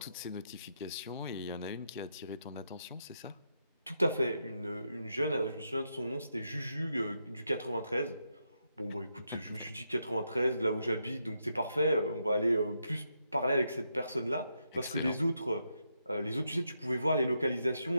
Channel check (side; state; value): both; inverted; correlation -0.81